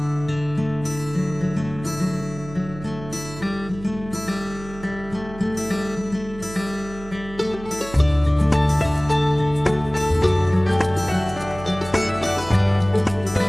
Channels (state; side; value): noise; right; hum, 15 dB below the sound